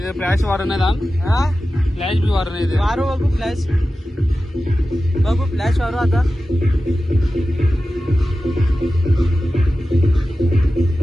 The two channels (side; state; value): both; normal; correlation 0.94